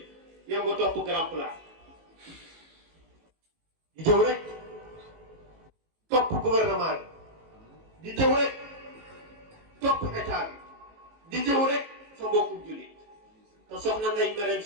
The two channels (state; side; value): late; left; 18 ms